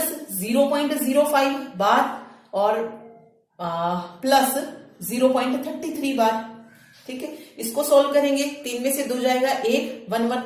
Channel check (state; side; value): identical; both; correlation 1.00